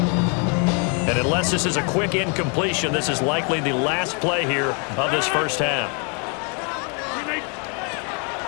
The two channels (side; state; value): right; quieter; 37.3 dB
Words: And unless this is a quick incompletion, this is likely the last play here of this first half.